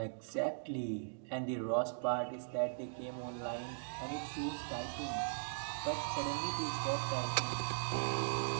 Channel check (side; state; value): left; silent; digital silence